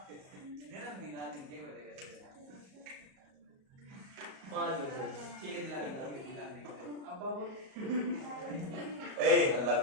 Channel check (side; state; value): left; late; 37 ms